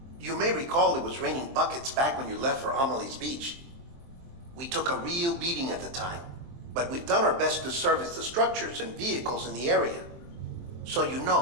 You may recall it was raining buckets back when you left for Amelie's Beach. We took a real beating at the time, but we've done our best to service the structures and vehicles in the area. So you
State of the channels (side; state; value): left; late; 23 ms